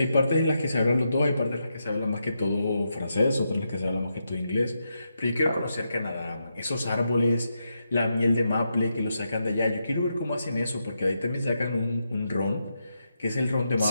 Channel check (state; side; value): inverted; both; correlation -0.84